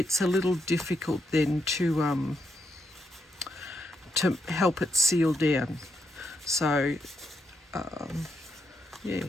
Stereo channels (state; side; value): normal; both; correlation 0.80